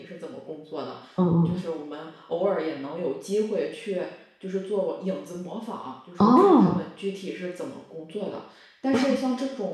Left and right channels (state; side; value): identical; both; correlation 1.00